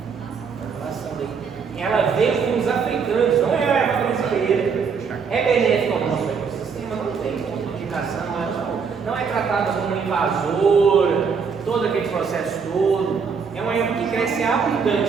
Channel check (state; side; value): quieter; left; 5.9 dB